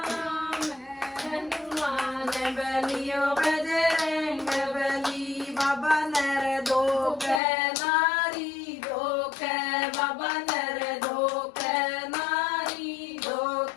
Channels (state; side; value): drops out; right; at 7.4 s